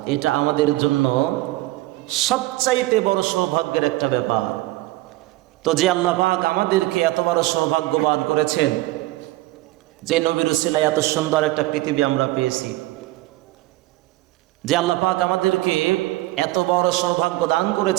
এটা আমাদের জন্য সবচাইতে বড় সৌভাগ্যের একটা ব্যাপার। তো যে আল্লাহ পাক আমাদেরকে এত বড় সৌভাগ্যবান করেছেন, যে নবীর উসিলায় এত সুন্দর একটা পৃথিবী আমরা পেয়েছি, যে আল্লাহ পাক আমাদেরকে এত বড় সৌভাগ্য দান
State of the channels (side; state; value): left; quieter; 18.4 dB